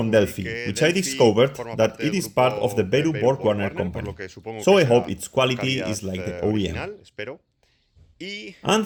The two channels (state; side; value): identical; both; correlation 1.00